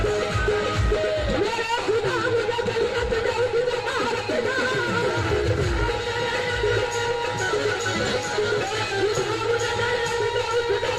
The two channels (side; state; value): both; identical; correlation 1.00